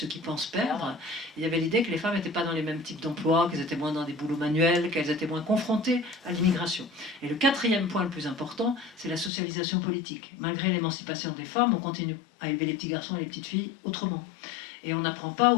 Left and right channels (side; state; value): right; drops out; at 9.3 s